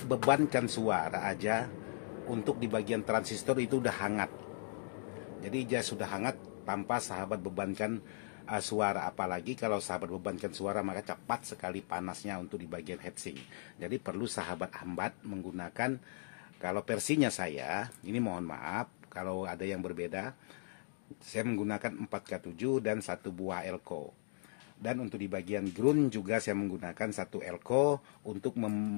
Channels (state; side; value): silent; right; digital silence